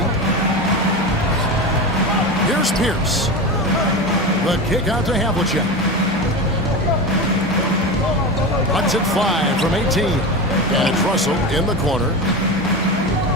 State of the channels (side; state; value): both; normal; correlation 0.23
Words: Here's Pierce. The kick out to Havlicek. Runs it 5 from 18. And it's Russell in the corner.